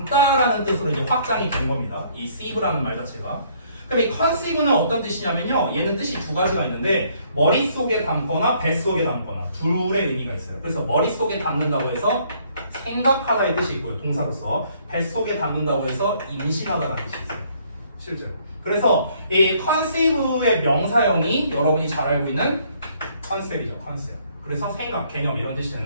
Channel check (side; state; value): both; inverted; correlation -0.64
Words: 뜻으로 이제 확장이 된 겁니다. 이 sieve라는 말 자체가. 그럼 이 conceive는 어떤 뜻이냐면요. 얘는 뜻이 두 가지가 있는데 머릿속에 담거나 뱃속에 담거나 둘의 의미가 있어요. 그래서 머릿속에 담는다고 해서 생각하다의 뜻이 있고요. 동사로서 뱃속에 담는다고 해서 임신하다라는 뜻이 있어요. 실제로. 그래서 이 conceive의 명사형이 여러분이 잘 알고 있는 컨셉이죠. 컨셉. 그래서 생각, 개념 이런 뜻이